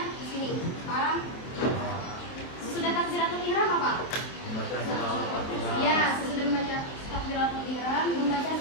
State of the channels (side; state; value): right; late; 26 ms